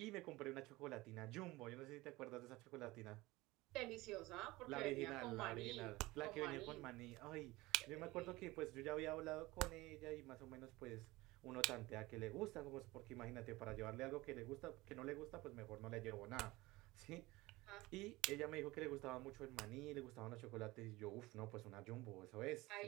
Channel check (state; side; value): quieter; left; 20.3 dB